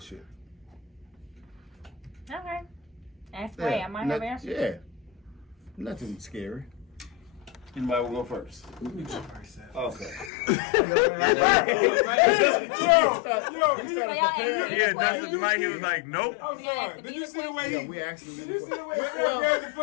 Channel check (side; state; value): right; drops out; at 10.3 s